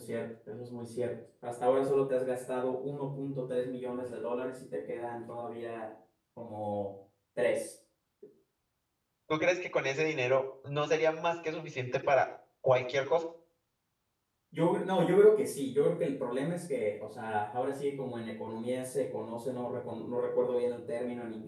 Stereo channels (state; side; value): identical; both; correlation 1.00